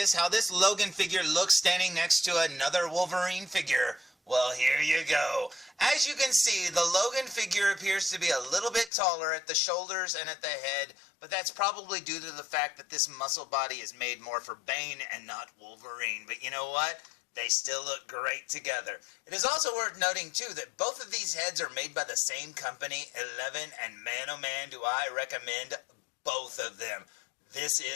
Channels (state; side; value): drops out; right; at 8.9 s